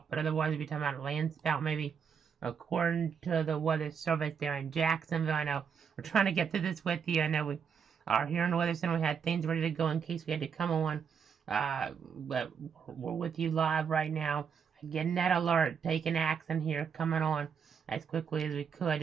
but otherwise, we'll be talking about a land spout maybe. According to the weather service there in Jacksonville, I know we're trying to get through this with you. I know we are here in the Weather Center. We had things ready to go in case we had to come on. But we're with you live right now. Getting that alert, taking action here, coming on as quickly as we could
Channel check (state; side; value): quieter; left; 6.8 dB